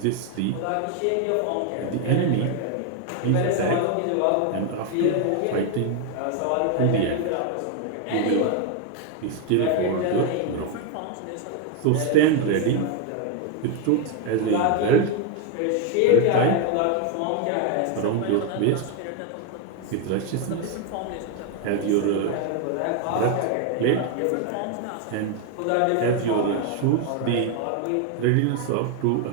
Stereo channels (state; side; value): different; both; correlation 0.01